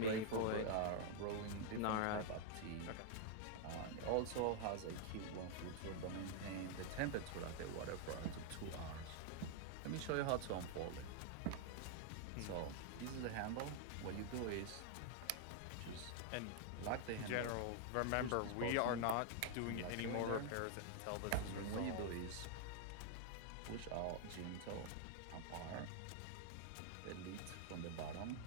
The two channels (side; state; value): both; different; correlation 0.00